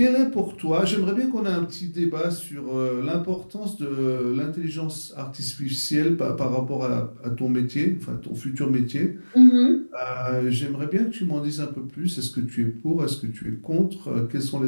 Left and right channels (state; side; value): inverted; both; correlation -1.00